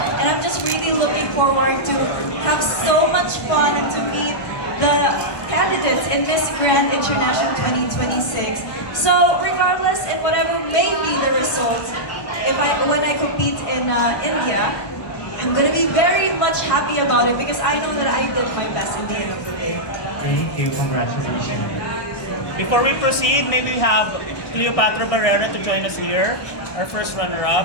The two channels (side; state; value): right; late; 1.2 ms